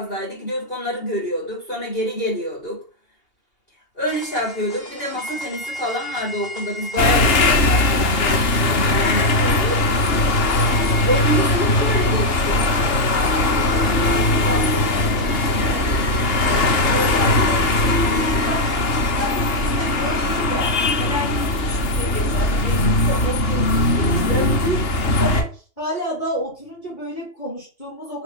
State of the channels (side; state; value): right; late; 2.8 ms